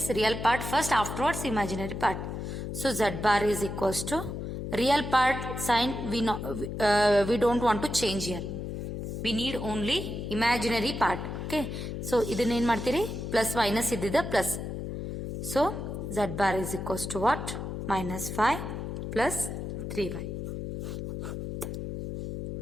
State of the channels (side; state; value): left; noise; hum, 5 dB below the sound